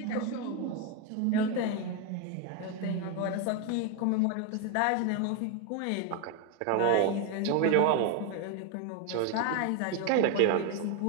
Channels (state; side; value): different; both; correlation 0.01